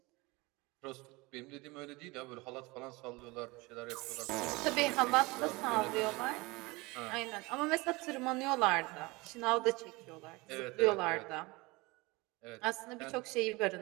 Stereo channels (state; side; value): quieter; left; 23.8 dB